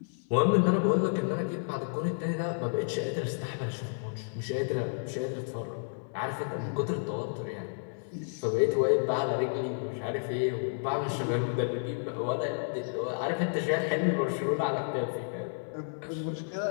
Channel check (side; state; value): right; silent; digital silence